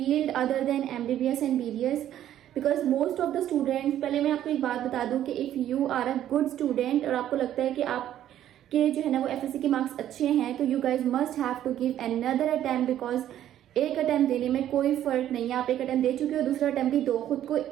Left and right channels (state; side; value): quieter; left; 11.6 dB